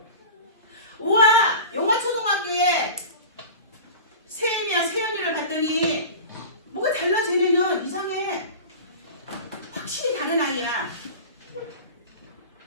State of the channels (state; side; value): inverted; both; correlation -0.34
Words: 우와 용화초등학교에 세연이를 봤더니 뭐가 달라. 쟤네는 이상해. 확실히 다른 아이야.